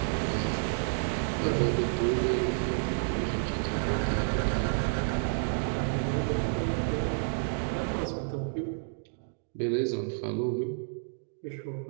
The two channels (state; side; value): silent; left; digital silence